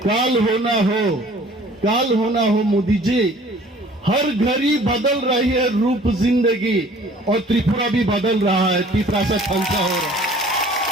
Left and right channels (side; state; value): both; normal; correlation 0.51